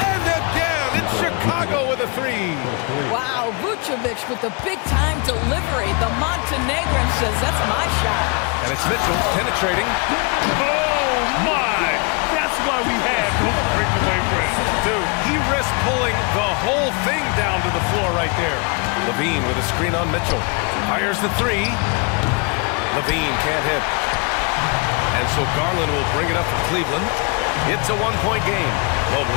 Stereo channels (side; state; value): right; quieter; 33.4 dB